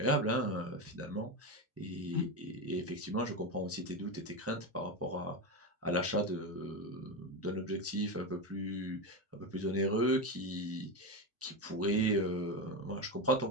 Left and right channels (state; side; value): normal; both; correlation 0.15